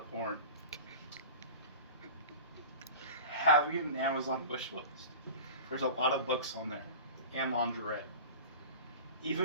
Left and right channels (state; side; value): inverted; both; correlation -0.36